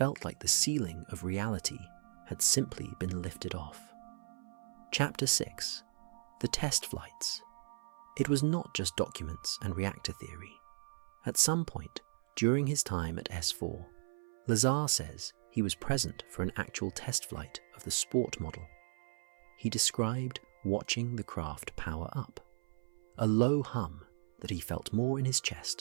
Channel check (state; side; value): silent; left; 53 dB below the other